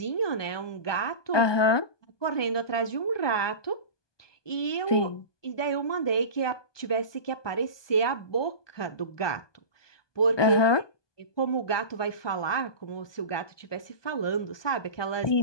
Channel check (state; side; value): late; right; 1.2 ms